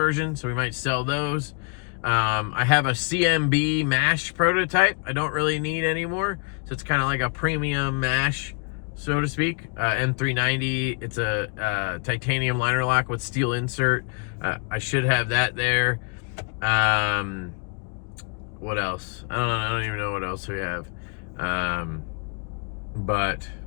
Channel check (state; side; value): quieter; right; 39.5 dB